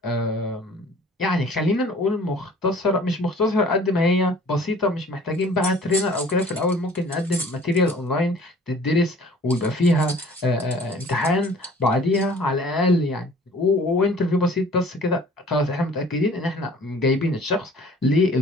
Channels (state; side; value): normal; both; correlation 0.51